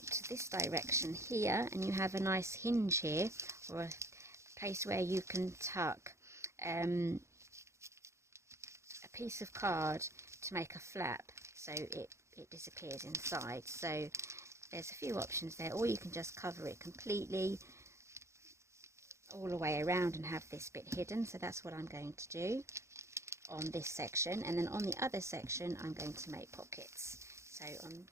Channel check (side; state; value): left; late; 0.14 ms